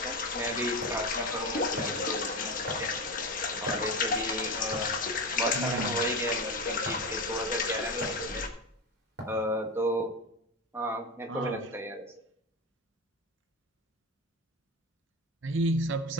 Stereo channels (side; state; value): both; normal; correlation 0.20